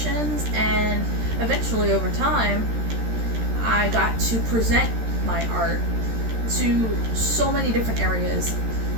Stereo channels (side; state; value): left; late; 13 ms